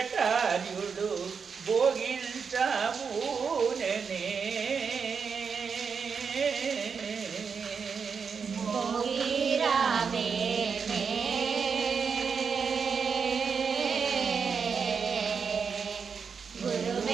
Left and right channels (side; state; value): left; quieter; 5.9 dB